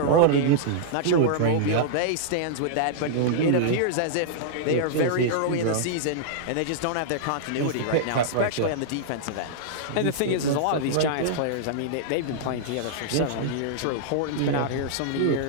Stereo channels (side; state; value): both; different; correlation -0.02